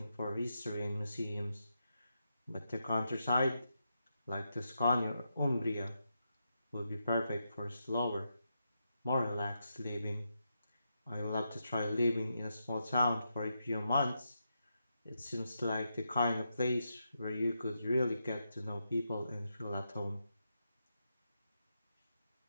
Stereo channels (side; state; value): both; inverted; correlation -0.85